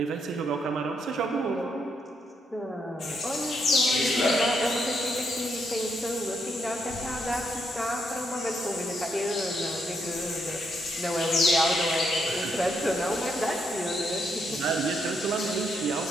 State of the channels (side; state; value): both; normal; correlation 0.77